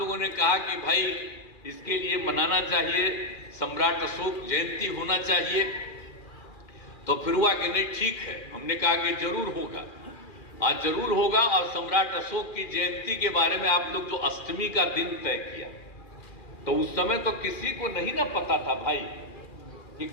ने कहा कि भाई इसके लिए मनाना चाहिए, सम्राट अशोक जयंती होना चाहिए। तो फिर हुआ कि नहीं ठीक है, हमने कहा कि जरूर होगा, आज जरूर होगा। और सम्राट अशोक की जयंती के बारे में आप लोग जो अष्टमी का दिन तय किया, तो उस समय तो किसी को नहीं ना पता था भाई कि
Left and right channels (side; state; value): right; late; 2.4 ms